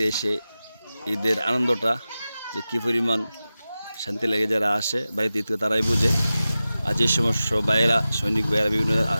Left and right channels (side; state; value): both; inverted; correlation -0.95